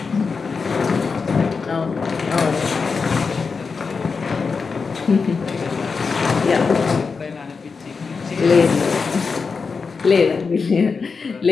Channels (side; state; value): right; quieter; 5.0 dB